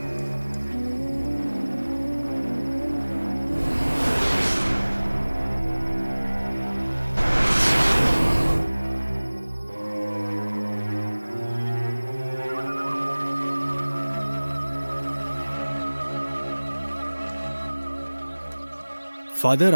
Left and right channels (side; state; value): both; inverted; correlation -1.00